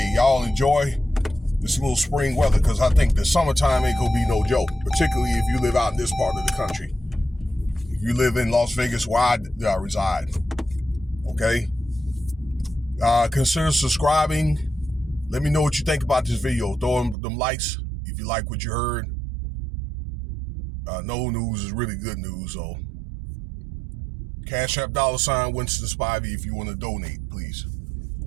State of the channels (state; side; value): drops out; left; at 17.2 s